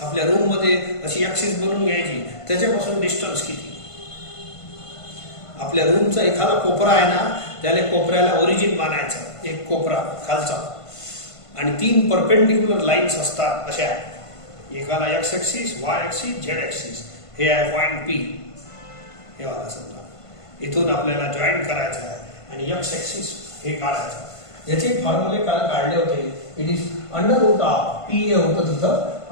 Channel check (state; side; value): late; right; 1.5 ms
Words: आपल्या रूम मध्ये अशी ऍक्सिस बनवून घ्यायची, त्याच्यापासून डिस्टन्स किती. आपल्या रूमचा एखादा कोपरा आहे ना, त्याला कोपऱ्याला ओरिजिन मानायचं, एक कोपरा खालचा, आणि 3 परपेंडिक्युलर लाईन्स असतात अशा, एकाला x axis, Y axis, Z axis. हे आहे पॉइंट P. हे वाला समजा इथून आपल्याला जॉईन करायचं आहे आणि एक्स ऍक्सिस हे काढायचं. याचे फॉर्म्युले काल काढले होते. It is under root of P हे होतं तिथं,